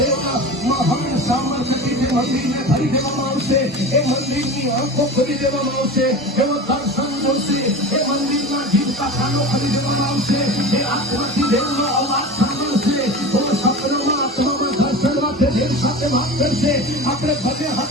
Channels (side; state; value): both; normal; correlation 0.31